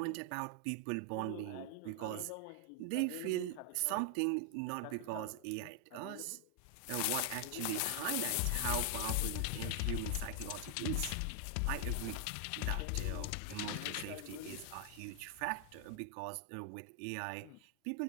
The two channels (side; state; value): both; different; correlation 0.00